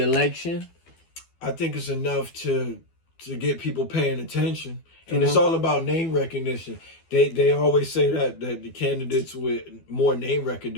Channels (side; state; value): right; late; 12 ms